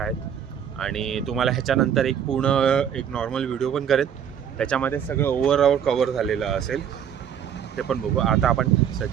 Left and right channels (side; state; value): left; quieter; 8.6 dB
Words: आणि तुम्हाला ह्याच्यानंतर एक नॉर्मल व्हिडिओ पण करेन, त्याच्यामध्ये सगळं ओव्हरऑल कवर झालेलं असेल, ते पण बघू. आता आपण